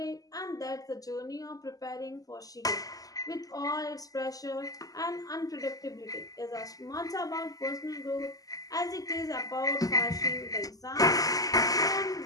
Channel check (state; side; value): late; right; 0.17 ms